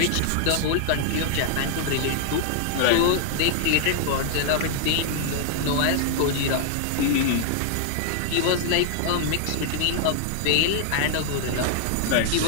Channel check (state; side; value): different; both; correlation -0.01